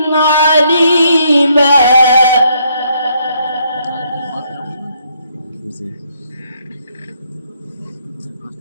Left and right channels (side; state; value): both; inverted; correlation -0.71